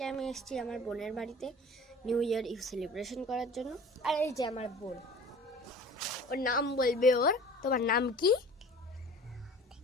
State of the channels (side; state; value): both; normal; correlation 0.43